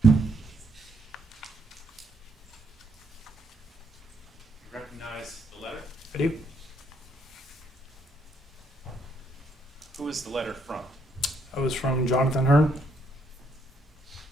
You recognize the letter? I do. Who is the letter from? I was from Jonathan Hearn.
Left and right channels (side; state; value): both; normal; correlation 0.73